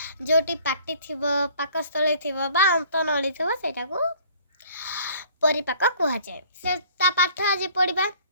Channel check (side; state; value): both; inverted; correlation -0.55